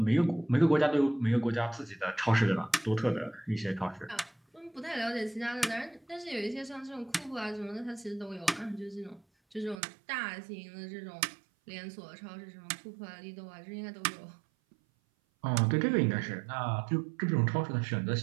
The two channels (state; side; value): drops out; left; at 9.8 s